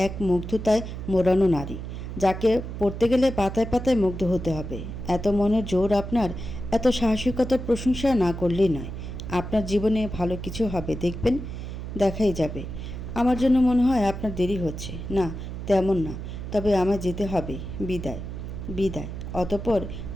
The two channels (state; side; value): noise; right; hum, 8 dB below the sound